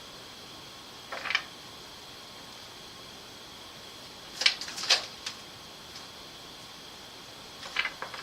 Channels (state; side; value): identical; both; correlation 1.00